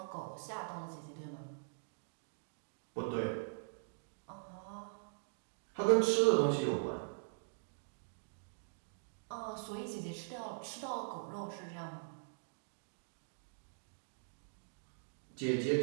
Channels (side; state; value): left; silent; digital silence